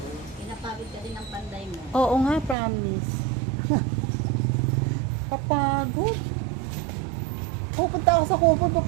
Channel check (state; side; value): drops out; left; at 2.6 s